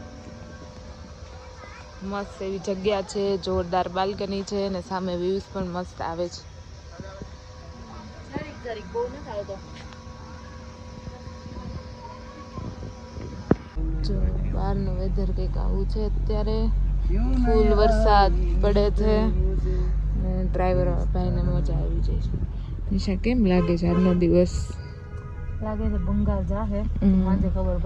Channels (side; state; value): both; identical; correlation 1.00